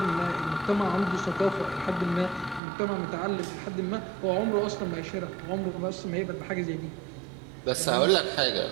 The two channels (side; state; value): left; drops out; at 2.6 s